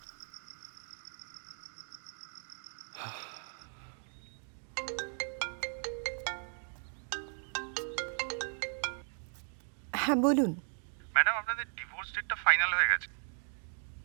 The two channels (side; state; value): left; silent; 53 dB below the other